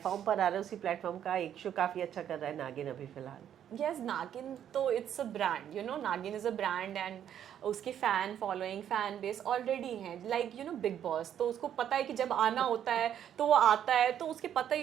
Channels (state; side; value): quieter; left; 9.9 dB